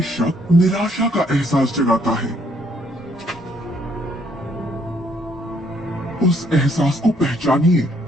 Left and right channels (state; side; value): normal; both; correlation 0.68